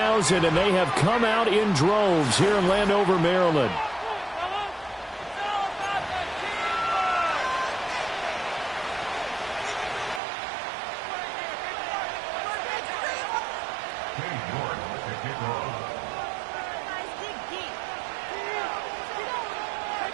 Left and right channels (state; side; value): drops out; left; at 10.2 s